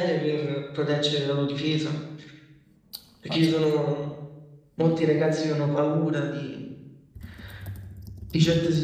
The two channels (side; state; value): both; identical; correlation 1.00